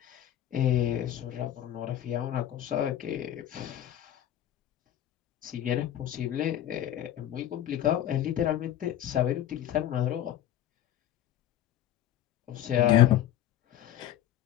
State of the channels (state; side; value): quieter; right; 11.5 dB